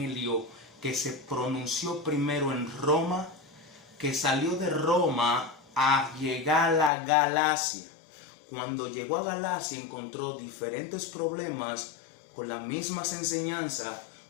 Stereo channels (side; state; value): right; drops out; at 6.9 s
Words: que se pronunció primero en Roma, que salió de Roma a llegar a Galacia. Cuando llegó a Galacia encontró diferentes problemas con las mismas enseñanzas,